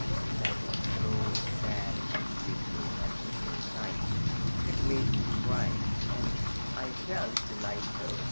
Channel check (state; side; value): inverted; both; correlation -1.00